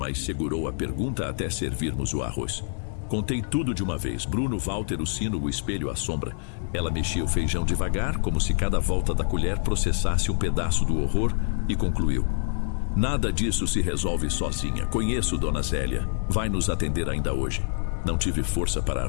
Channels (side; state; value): right; silent; digital silence